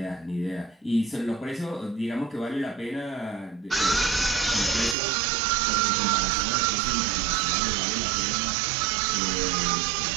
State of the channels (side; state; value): left; drops out; at 5.0 s